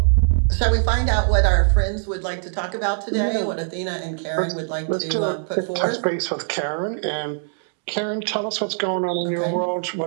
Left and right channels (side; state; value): left; silent; digital silence